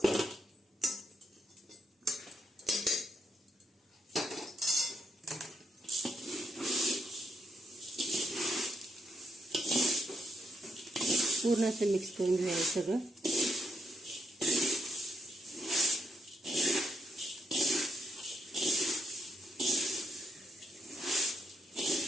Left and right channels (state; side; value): normal; both; correlation 0.79